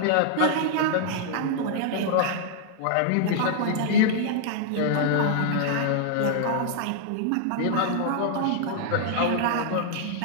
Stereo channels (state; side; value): different; both; correlation -0.01